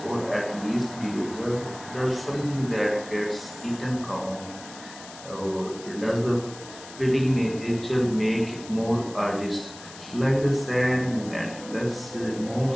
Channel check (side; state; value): left; noise; hiss, 16 dB below the sound